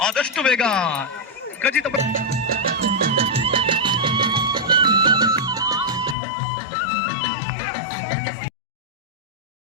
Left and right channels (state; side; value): drops out; right; at 6.2 s